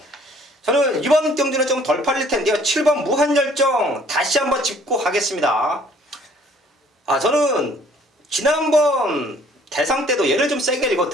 저는 이번 경주는 좀 덜 팔릴 텐데요. 7번 무한열정 다시 한번 짚고 가겠습니다. 저는 지난번 대상 때도 얘를 좀 세게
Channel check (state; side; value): normal; both; correlation 0.58